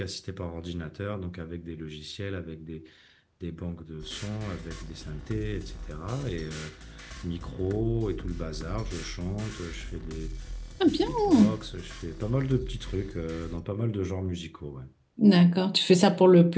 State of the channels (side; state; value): both; identical; correlation 1.00